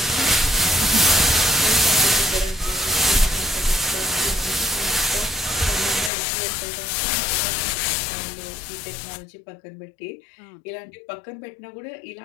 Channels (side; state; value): right; drops out; at 6.1 s